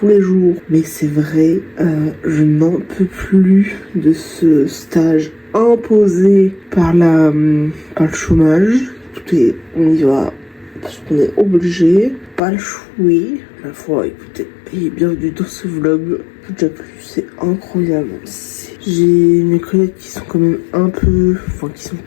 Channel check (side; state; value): right; drops out; at 12.4 s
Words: les jours, mais c'est vrai, je n'en peux plus de ce stage imposé par le chômage. On y va parce qu'on est obligé, pas le chouer. La fois, écoutez, et bienvenue dans ce vlog. Déjà plus, c'est incroyable. J'ai mes collègues qui sont quand même qui sont